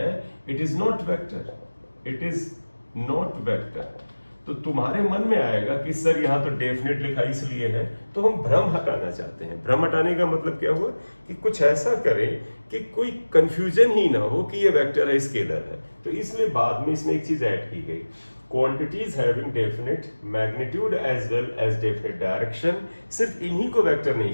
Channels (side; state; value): both; inverted; correlation -1.00